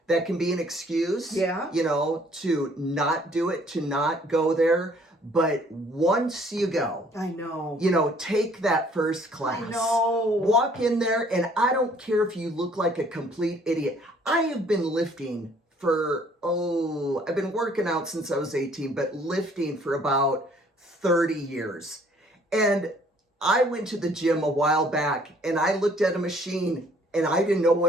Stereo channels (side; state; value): both; normal; correlation 0.60